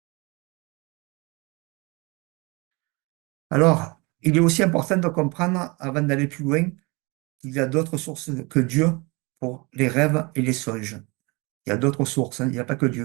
Alors, il est aussi important de comprendre, avant d'aller plus loin, qu'il y a d'autres sources que Dieu pour les rêves et les songes. Il y a d'autres sources, hein, il n'y a pas que Dieu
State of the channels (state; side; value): quieter; left; 27.2 dB